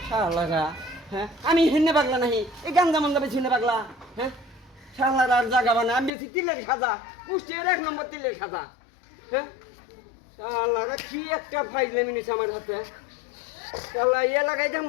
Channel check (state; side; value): drops out; right; at 6.1 s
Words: শালারা হ্যাঁ আমি হেনে পাগলা নাহি, এই গাঞ্জা মন্দা বেশি হেনে পাগলা। হ্যাঁ শালারা আর জাগা বানা, আমি বেশি তিলের খাজা, কুষ্টিয়ার 1 নম্বর তিলের খাজা। হ্যাঁ শালারা কি একটা ফাইজলামি নিছে আমার হাতে। শালা ইয়া লাগাইতাম